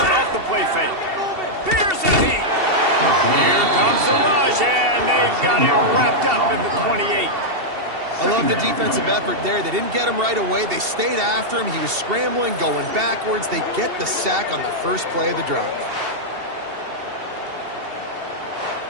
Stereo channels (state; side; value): late; left; 2.7 ms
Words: off the play fake. Here's the heat. Here comes the rush, and they've got it wrapped up at the 28. I love the defensive effort there. They didn't get him right away. They stayed after him. He was scrambling, going backwards. They get the sack on the first play of the drive.